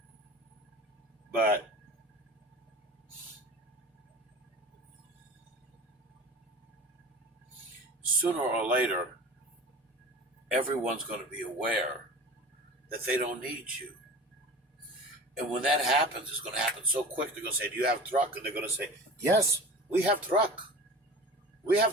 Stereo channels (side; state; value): both; normal; correlation 0.37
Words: But sooner or later, everyone's going to be aware that they don't need you. And when that happens, it's going to happen so quick. They're going to say, do you have truck? And they're going to say, yes, we have truck. We